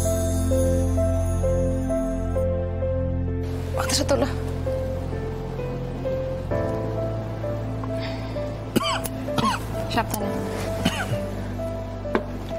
মাথাটা তোলো। সাবধানে।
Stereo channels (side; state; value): both; identical; correlation 1.00